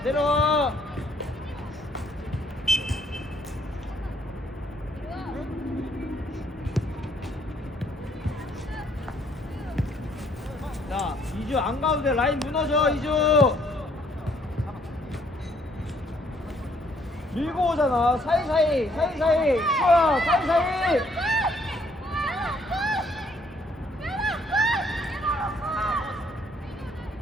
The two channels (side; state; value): both; normal; correlation 0.66